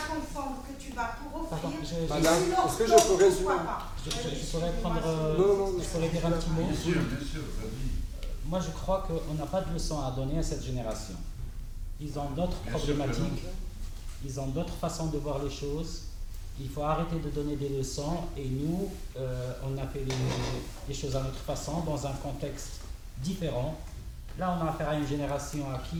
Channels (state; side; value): identical; both; correlation 1.00